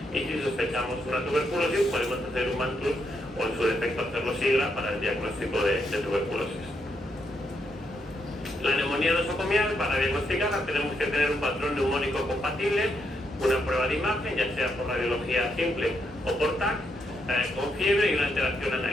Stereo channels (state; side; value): normal; both; correlation 0.79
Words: y si sospechamos una tuberculosis podemos hacer un MANTUS o en su defecto hacerlo SIGRA para el diagnóstico de tuberculosis. La neumonía nosocomial, para diagnosticarla tenemos que tener un patrón neumónico compatible, una prueba de imagen, ya sea por radiología simple o por TAC, con fiebre y una alteración